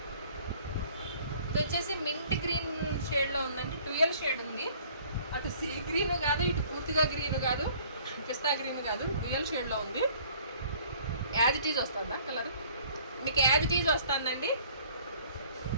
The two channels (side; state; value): both; inverted; correlation -0.55